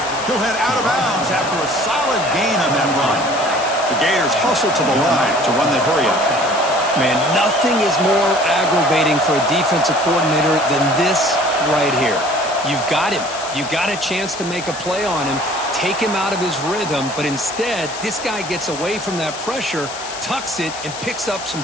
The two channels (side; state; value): left; noise; hiss, 11 dB below the sound